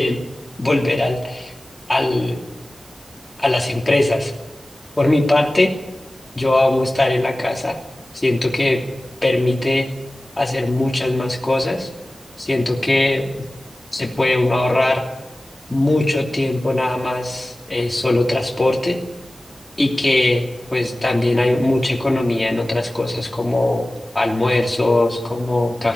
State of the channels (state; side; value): normal; both; correlation 0.97